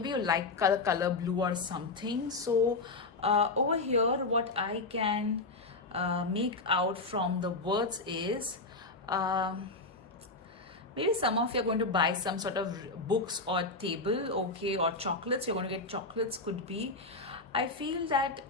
you like color blue or something. So over here what I can make out from the words is maybe some of you are going to buy some sort of books or table, okay, or chocolates. You're going to get chocolates, could be. I feel that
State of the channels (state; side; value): quieter; right; 3.4 dB